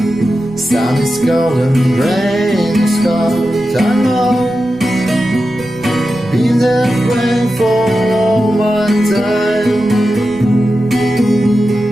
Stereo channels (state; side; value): noise; right; rumble, 22 dB below the sound